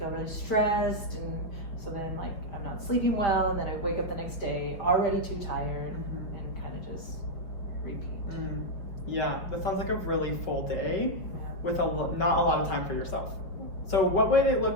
really stressed, and so then like I'm not sleeping well, and then I wake up the next day already too tired, and kind of just repeat. Yeah, that sounds like a really full day with not a lot of time for yourself. So what would it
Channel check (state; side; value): late; right; 5.3 ms